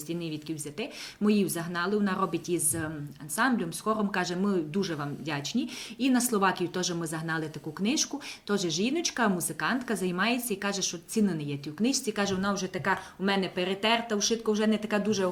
ні відки взяти. Ми її загнали, вона робить із ансамблем, з хором, каже, ми дуже вам вдячні. І на Словакію теж ми загнали таку книжку, теж жіночка, музикантка, займається і каже, що ціни не є тій книжці, каже, вона вже така у мене перетерта, ушитка вже не така дуже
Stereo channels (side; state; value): both; identical; correlation 1.00